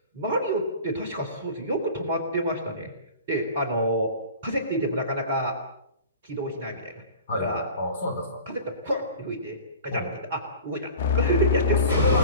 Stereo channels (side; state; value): both; inverted; correlation -0.39